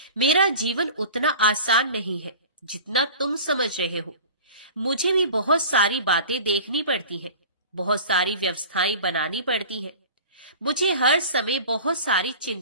मेरा जीवन उतना आसान नहीं है जितना तुम समझ रहे हो। मुझे भी बहुत सारी बातें देखनी पड़ती हैं, बहुत सारी व्यवस्थाएं बनानी पड़ती हैं। मुझे हर समय बहुत सारी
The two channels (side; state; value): both; inverted; correlation -0.39